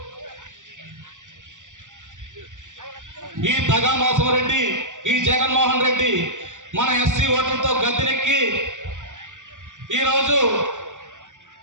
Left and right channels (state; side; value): late; left; 0.86 ms